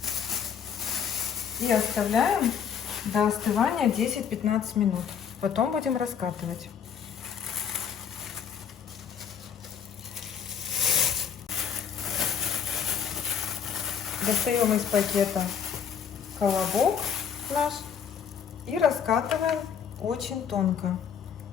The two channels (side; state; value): right; quieter; 7.6 dB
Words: И оставляем до остывания 10-15 минут. Потом будем раскатывать. Достаем из пакета колобок наш и раскатываем очень тонко.